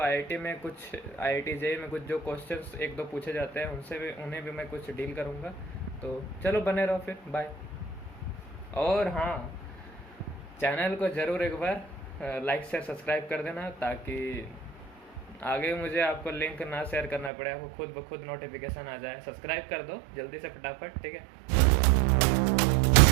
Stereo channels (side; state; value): left; drops out; at 17.3 s